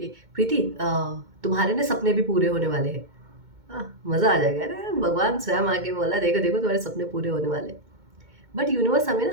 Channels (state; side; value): late; left; 2.2 ms